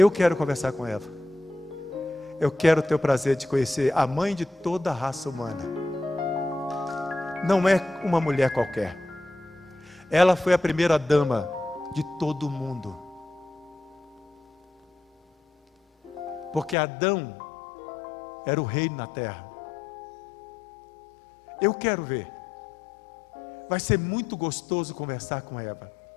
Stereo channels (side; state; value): right; drops out; at 16.8 s